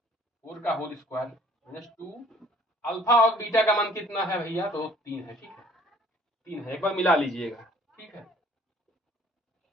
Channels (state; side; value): normal; both; correlation 0.55